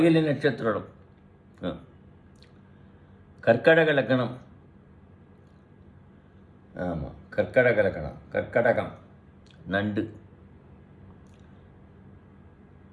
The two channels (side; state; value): both; identical; correlation 1.00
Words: நட்சத்திரம் கர்க்கடக லக்கணம். ஆமாம், கர்க்கடக லக்கணம். கர்க்கடகம் நண்டு.